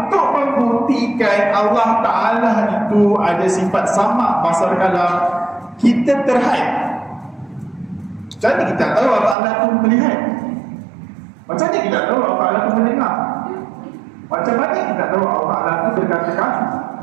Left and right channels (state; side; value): drops out; left; at 9.3 s